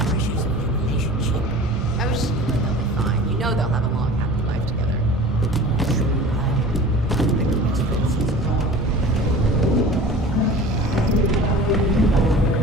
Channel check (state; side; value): normal; both; correlation 0.40